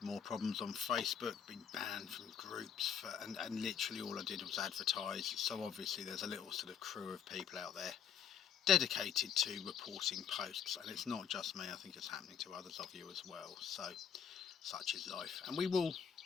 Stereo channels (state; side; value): quieter; right; 7.8 dB